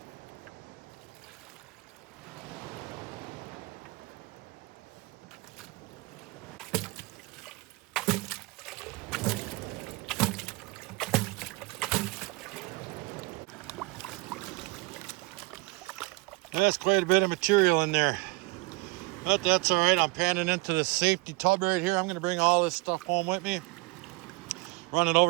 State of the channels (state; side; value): quieter; left; 24.3 dB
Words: That's quite a bit of material in there. But that's all right. I'm panning into the safety tub right here. I'm going to bring all this stuff home with me. Run it